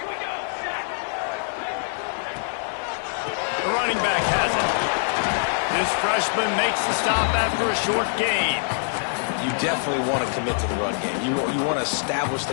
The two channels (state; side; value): silent; right; digital silence